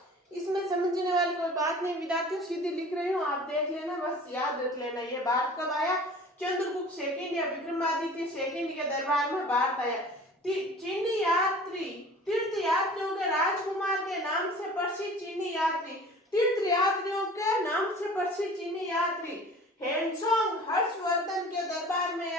इसमें समझने वाली कोई बात नहीं विद्यार्थियों, सीधी लिख रही हूँ, आप देख लेना, बस याद रख लेना। ये भारत कब आया, चंद्रगुप्त सेकंड या विक्रमादित्य सेकंड के दरबार में भारत आया। चीनी यात्री तीर्थ यात्रियों के राजकुमार के नाम से प्रसिद्ध चीनी यात्री, तीर्थ यात्रियों के नाम से प्रसिद्ध चीनी यात्री हेनसोंग हर्षवर्धन के दरबार में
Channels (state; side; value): normal; both; correlation 0.44